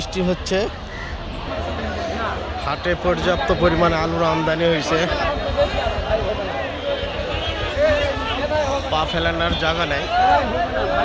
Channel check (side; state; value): both; identical; correlation 1.00